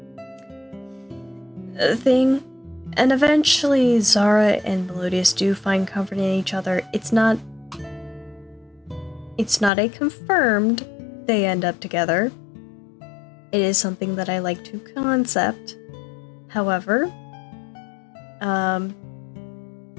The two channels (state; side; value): drops out; right; at 9.7 s